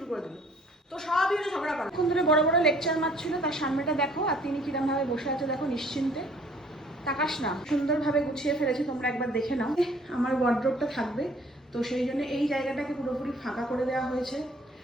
করে দিল। তো সবই হলো ঝগড়া করা। এখন ধরে বড় বড় লেকচার মারছিল, তার সামনেটা দেখো আর তিনি কিরম ভাবে বসে আছে দেখো, নিশ্চিন্তে। তাকাস না, সুন্দরভাবে গুছিয়ে ফেলেছি, তোমরা একবার দেখে নাও। আমার ওয়ার্ড্রপটা থাকবে, তো সেই জন্য এই জায়গাটাকে পুরোপুরি ফাঁকা করে দেওয়া হয়েছে।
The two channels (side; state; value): both; normal; correlation 0.57